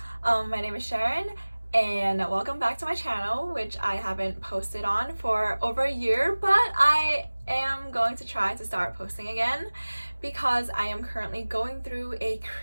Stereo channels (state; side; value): inverted; both; correlation -1.00